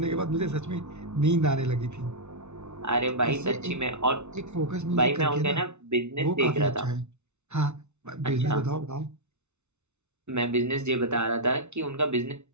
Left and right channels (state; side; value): late; left; 0.82 ms